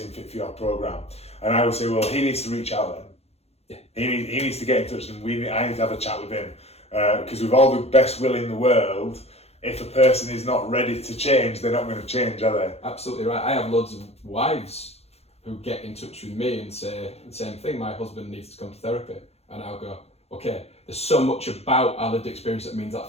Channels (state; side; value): late; right; 0.30 ms